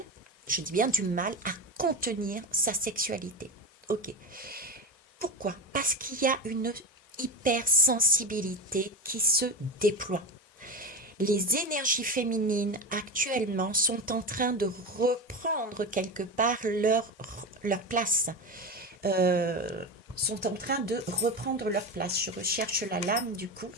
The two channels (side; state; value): both; normal; correlation 0.21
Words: je dis bien du mal, à contenir sa sexualité. Ok. Pourquoi? Parce qu'il y a une hypersensibilité qui se déploie. Les énergies féminines actuellement sont en train de reprendre quelque part leur place. Sont en train de reprendre leur place. Je recherche la lame du coup.